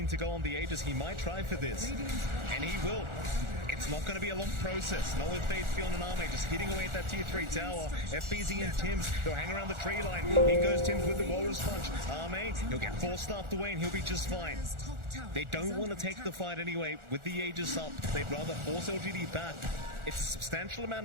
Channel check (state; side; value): late; left; 1.4 ms